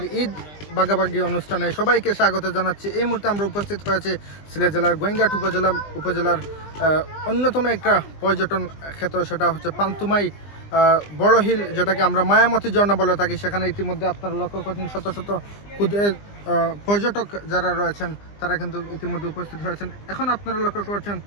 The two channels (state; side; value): late; right; 20 ms